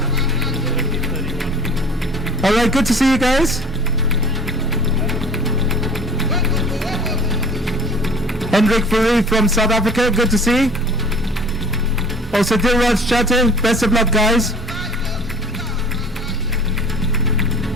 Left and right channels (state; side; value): normal; both; correlation 0.45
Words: All right, good to see you guys. Henrik Furi from South Africa, good to see. Also Diraj Chate, best of luck, guys.